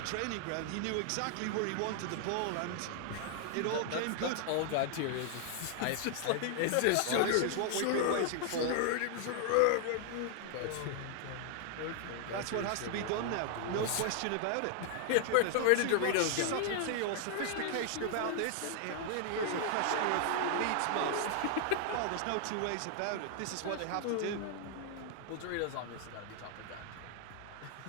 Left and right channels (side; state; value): both; different; correlation 0.00